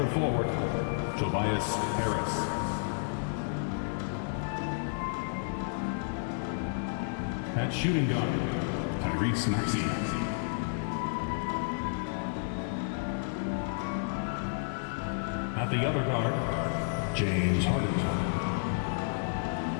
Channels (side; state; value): right; silent; digital silence